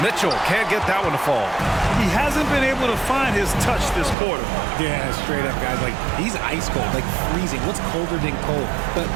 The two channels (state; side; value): drops out; left; at 4.2 s